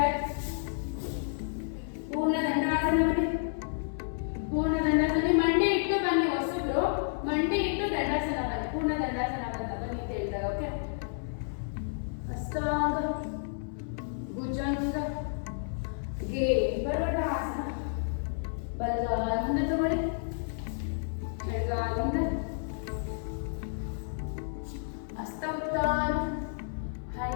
ಪೂರ್ಣ ದಂಡಾಸನ ಬನ್ನಿ, ಪೂರ್ಣ ದಂಡಾಸನ. ಮಂಡಿ ಇಟ್ಟು ಬನ್ನಿ, ಹೊಸಬ್ರು ಮಂಡಿ ಇಟ್ಟು ದಂಡಾಸನ ಬನ್ನಿ, ಪೂರ್ಣ ದಂಡಾಸನ ಅಂತ ಬನ್ನಿ ಅಂತ ಹೇಳ್ತಾರೆ. ಓಕೆ, ಹಸ್ತಾಂಗ ಭುಜಂಗ ಗೆ ಪರ್ವತಾಸನ. ಬಲಗಾಲ ಮುಂದೆ ತಗೊಳ್ಳಿ, ಎಡಗಾಲ ಮುಂದೆ, ಹಸ್ತ ಉತ್ಥಾನ,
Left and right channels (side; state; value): right; silent; 57 dB below the other